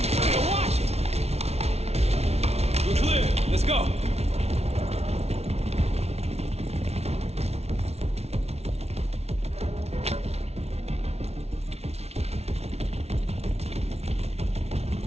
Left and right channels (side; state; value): left; late; 0.31 ms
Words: Watch it! We're clear. Let's go.